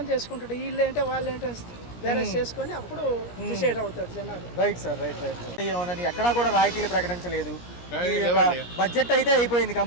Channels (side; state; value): right; late; 17 ms